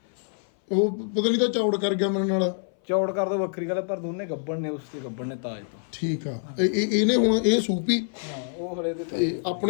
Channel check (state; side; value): silent; right; 58 dB below the other